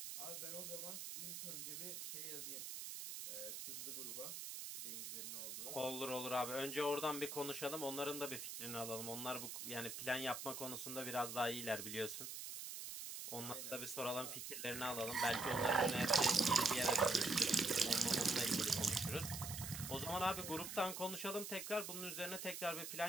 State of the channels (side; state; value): right; noise; hiss, 6 dB below the sound